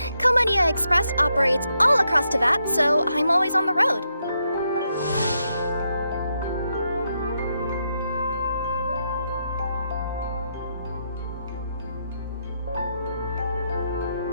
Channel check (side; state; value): both; inverted; correlation -0.81